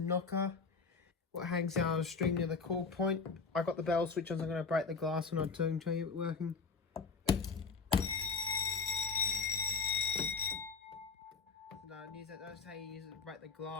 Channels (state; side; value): quieter; right; 5.0 dB